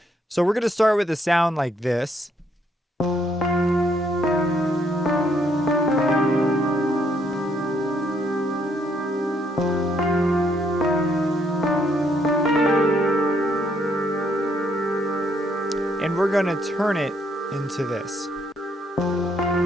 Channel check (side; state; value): both; normal; correlation 0.71